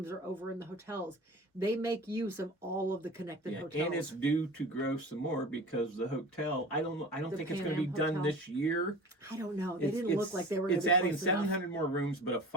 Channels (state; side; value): normal; both; correlation 0.38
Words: are over in the hotels. They make use of all of the connected hotels. And it's due to grow some more because the hotel, I don't think it's going to be done this year. I don't know. They didn't look like they were going to be adding 700 more rooms, but a